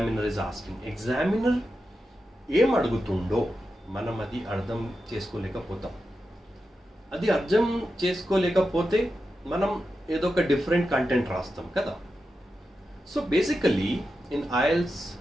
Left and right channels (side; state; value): both; normal; correlation 0.90